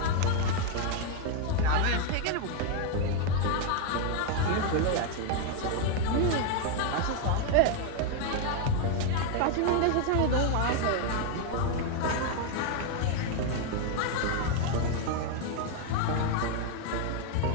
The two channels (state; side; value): different; both; correlation 0.01